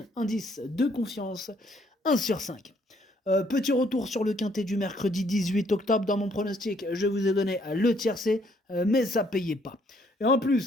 indice de confiance 1 sur 5. Petit retour sur le quintet du mercredi 18 octobre dans mon pronostic. Je vous ai donné le tiercé, mais ça payait pas. Et en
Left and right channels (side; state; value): both; normal; correlation 0.67